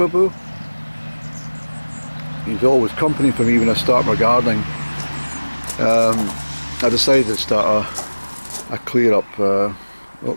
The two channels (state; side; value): inverted; both; correlation -1.00